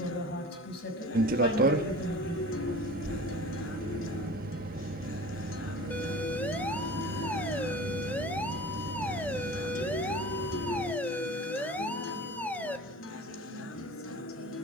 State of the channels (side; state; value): both; normal; correlation 0.39